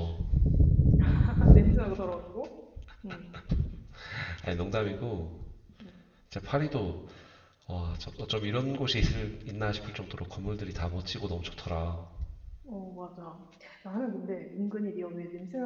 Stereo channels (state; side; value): identical; both; correlation 1.00